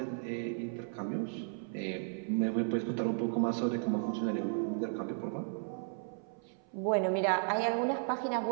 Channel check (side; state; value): left; silent; 55 dB below the other